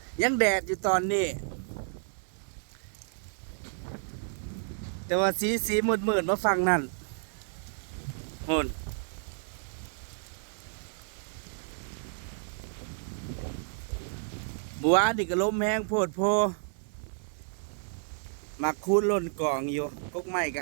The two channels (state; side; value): silent; left; 57 dB below the other